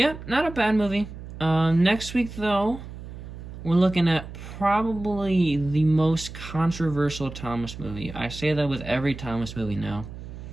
not a bad movie. Next week though, we're looking at probably the most controversial Thomas movie. I say that with every Thomas movie now,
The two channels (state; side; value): noise; right; hum, 12 dB below the sound